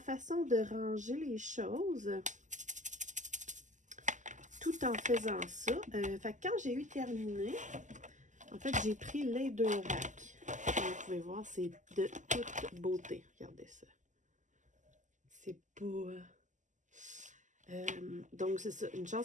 de ranger les choses tout en faisant ça. Fait que quand j'ai eu terminé, en fait, j'ai pris les 2 racks. Comme vous pouvez voir, c'est de toute beauté. Regardez ça. C'est beau. Donc, c'est ça. Une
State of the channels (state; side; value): late; left; 0.36 ms